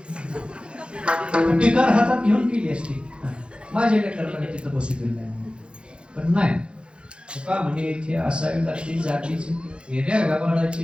टिकार हातात घेऊन केली असती. माझ्या लेकराकडे तिथं बसू दिलं नाही. पण नाही का म्हणजे इथे असावी लागते जातीची येण्या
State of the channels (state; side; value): late; left; 0.056 ms